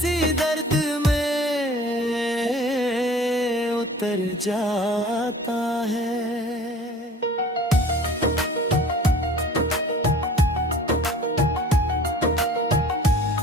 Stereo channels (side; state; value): both; normal; correlation 0.45